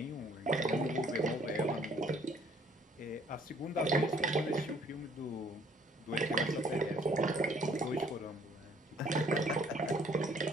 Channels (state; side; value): normal; both; correlation 0.61